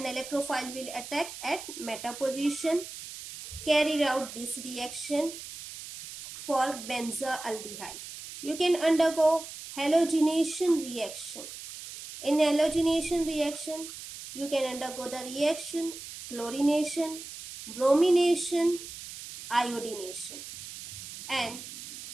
electrophile will attack at meta position. Carry out this reaction for benzaldehyde. You can undergo halogenation reaction. In halogenation reaction, you can undergo the reaction chlorination, bromination, iodination, and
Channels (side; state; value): right; noise; hiss, 12 dB below the sound